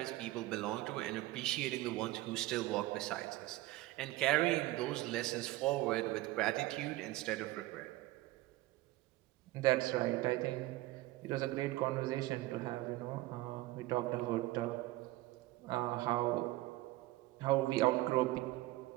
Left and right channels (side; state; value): left; quieter; 18.2 dB